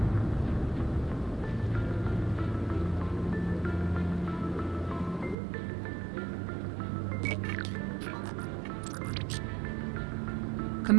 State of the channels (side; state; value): left; drops out; at 5.4 s